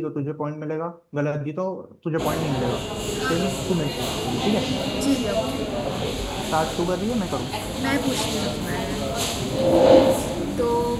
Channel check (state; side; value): identical; both; correlation 1.00